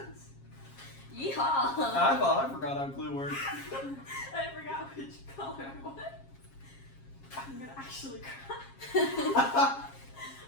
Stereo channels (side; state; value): right; late; 7.4 ms